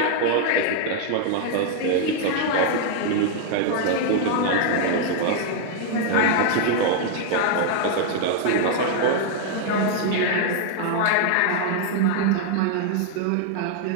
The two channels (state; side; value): different; both; correlation 0.00